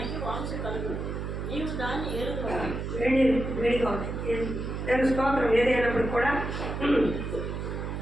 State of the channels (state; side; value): noise; right; hum, 5 dB below the sound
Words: వాంస కలుగు, నీవు దాన్ని ఏరుకోవాలి. వేడిగా ఉంది. దాని స్తోత్రం ఏదైనప్పుడు కూడా.